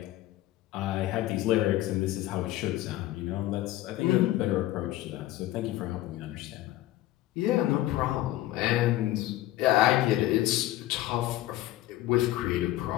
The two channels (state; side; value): quieter; right; 15.6 dB